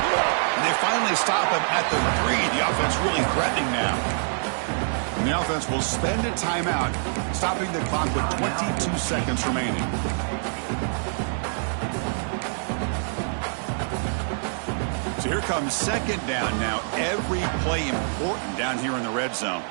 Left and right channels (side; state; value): left; silent; digital silence